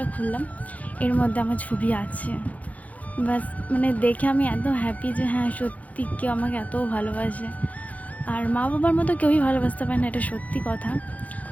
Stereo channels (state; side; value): late; right; 0.072 ms